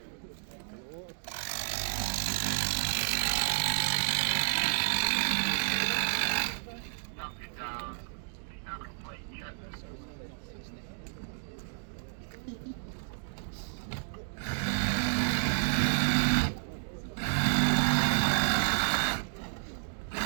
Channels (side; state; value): left; silent; digital silence